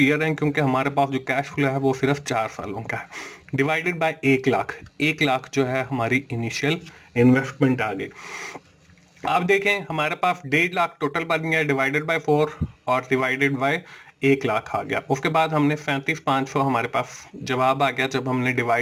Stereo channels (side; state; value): both; identical; correlation 1.00